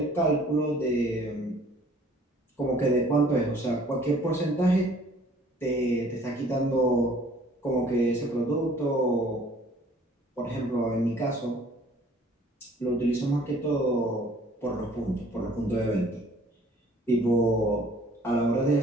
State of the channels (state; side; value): normal; both; correlation 0.55